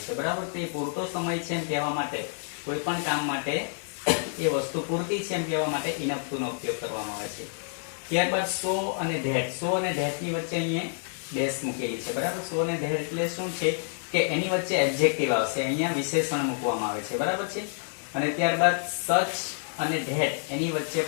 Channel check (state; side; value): silent; right; digital silence